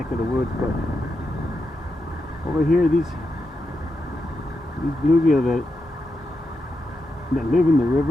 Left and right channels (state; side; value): normal; both; correlation 0.86